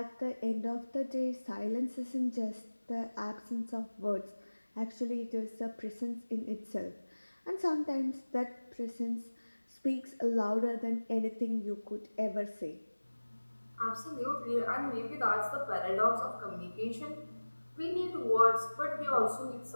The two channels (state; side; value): inverted; both; correlation -1.00